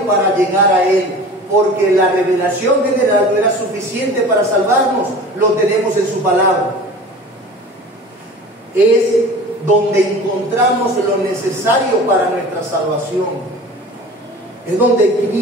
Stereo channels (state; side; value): normal; both; correlation 0.39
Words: para llegar a Él, porque la revelación general no era suficiente para salvarnos, lo tenemos en su palabra. Es donde encontramos lo necesario para nuestra salvación. Es donde